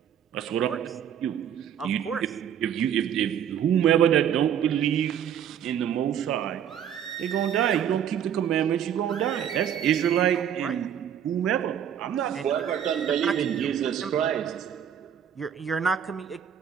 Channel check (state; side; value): quieter; left; 9.1 dB